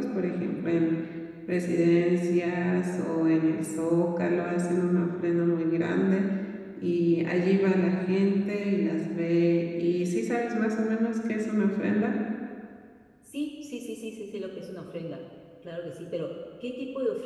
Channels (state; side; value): identical; both; correlation 1.00